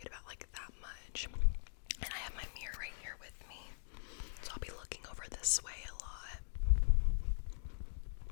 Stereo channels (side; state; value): right; silent; digital silence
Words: about like that much. And I have my mirror right here with me. So I'll be looking over this way a lot.